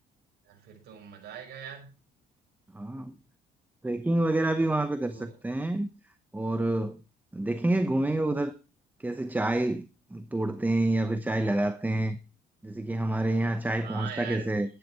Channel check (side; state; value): both; normal; correlation 0.93